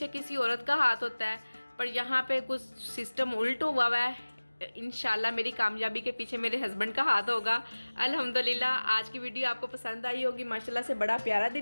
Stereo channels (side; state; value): both; inverted; correlation -1.00